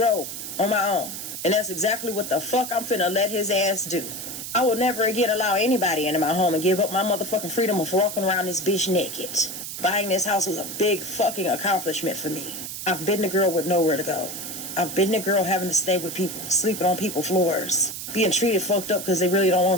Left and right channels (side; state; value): right; noise; hiss, 7 dB below the sound